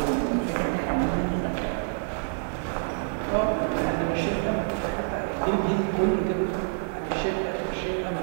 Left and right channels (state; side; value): silent; left; digital silence